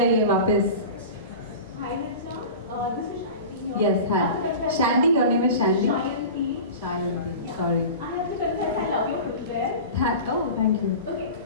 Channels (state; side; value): inverted; both; correlation -0.34